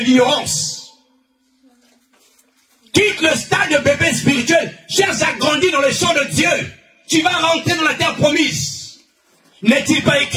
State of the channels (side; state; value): both; identical; correlation 1.00